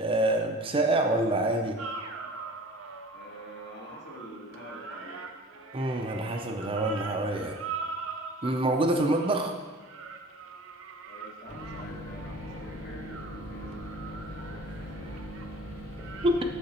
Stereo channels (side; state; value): both; normal; correlation 0.44